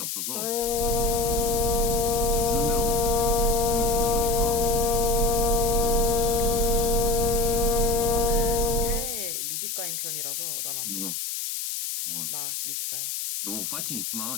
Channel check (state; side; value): noise; left; hiss, 4 dB below the sound